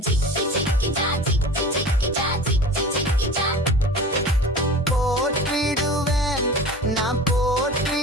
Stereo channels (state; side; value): normal; both; correlation 0.38